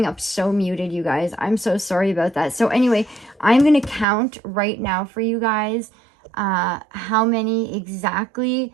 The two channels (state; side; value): drops out; left; at 4.0 s